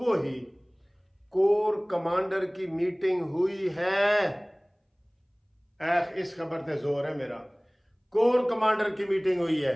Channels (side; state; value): both; identical; correlation 1.00